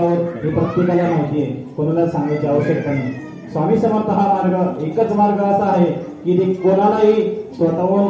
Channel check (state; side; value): identical; both; correlation 1.00